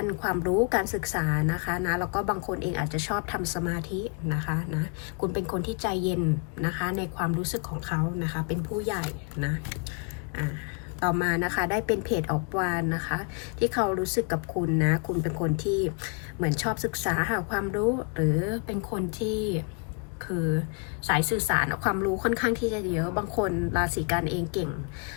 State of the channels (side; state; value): right; quieter; 35.7 dB